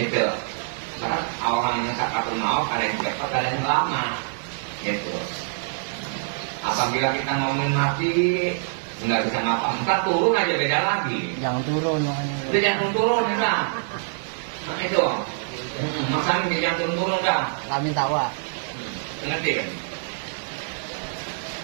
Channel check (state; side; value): silent; left; digital silence